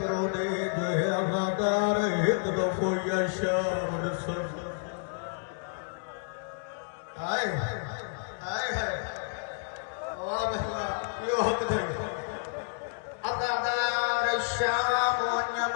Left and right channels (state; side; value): silent; right; 58 dB below the other